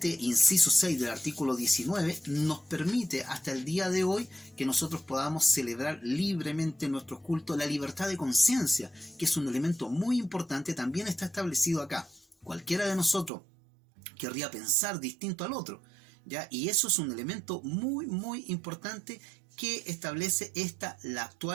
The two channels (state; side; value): drops out; left; at 13.3 s